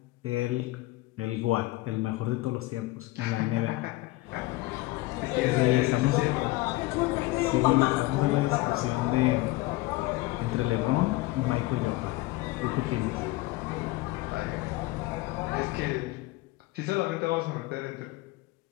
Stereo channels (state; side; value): quieter; right; 19.5 dB